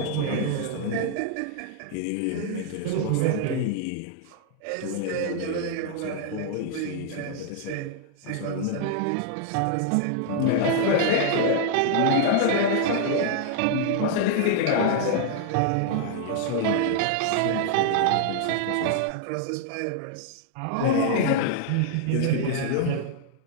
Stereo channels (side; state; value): both; different; correlation -0.01